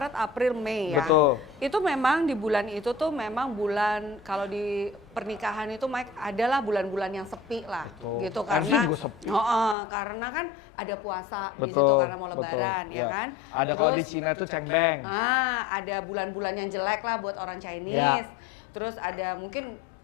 April, Mei ya. Betul. Itu memang di bulan itu tuh memang bulan, kalau di pernikahan itu Mike adalah bulan-bulan yang sepi lah. Betul. Gitu Harusnya karena juga sepi. karena kan ada puasa di Betul, situ karena mau betul. lebaran ya kan. Ada kalau di Cina itu cengbeng. Ada bulan-bulan yang jelek lah buat orang Chinese. Terus ada mungkin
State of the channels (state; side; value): drops out; right; at 9.8 s